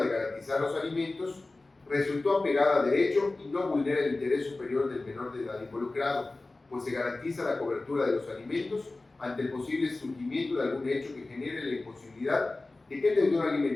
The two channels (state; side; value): quieter; right; 3.2 dB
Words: garantizar los alimentos, resultó apegada a derecho y no vulnera el interés superior del menor de edad involucrado, pues se garantiza la cobertura de los alimentos ante el posible surgimiento de algún hecho que genere la imposibilidad de que el deudor